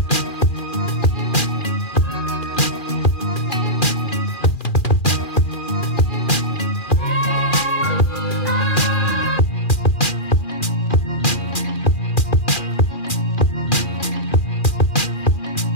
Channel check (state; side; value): late; right; 2.4 ms